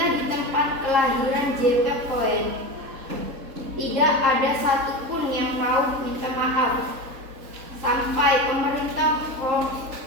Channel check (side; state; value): left; late; 3.8 ms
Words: di tempat kelahiran JP Cohen tidak ada satupun yang mau minta maaf. Sampai pemerintah